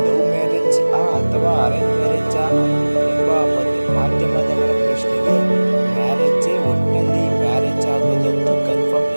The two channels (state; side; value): inverted; both; correlation -1.00